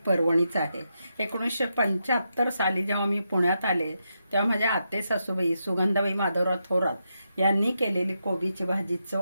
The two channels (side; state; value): both; inverted; correlation -0.84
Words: पर्वणीच आहे. 1975 साली जेव्हा मी पुण्यात आले तेव्हा माझ्या आते सासूबाई सुगंधाबाई माधवराव थोरात यांनी केलेली कोबीची भाजी